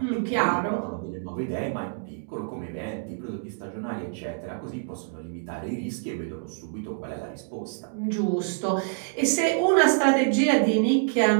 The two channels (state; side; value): silent; left; digital silence